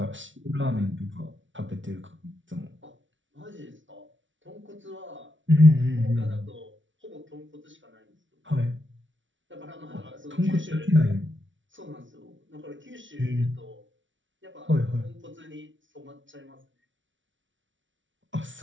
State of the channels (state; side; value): late; left; 0.56 ms